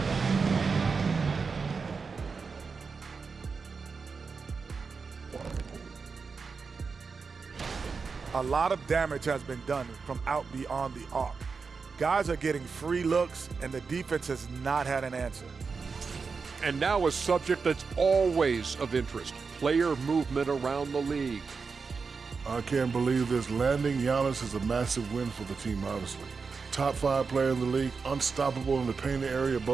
A lot of damage has been done from out beyond the arc. Guys are getting free looks, and the defense has not had an answer. And now a subject that's always of interest, player movement around the league. I can't believe this. Landing Giannis is a massive win for the team, obviously. Top 5 player in the league, unstoppable in the painted area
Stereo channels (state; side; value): quieter; left; 5.0 dB